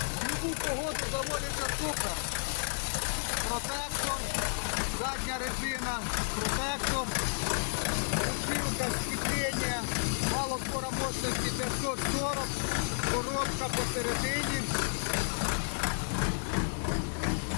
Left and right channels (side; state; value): right; silent; digital silence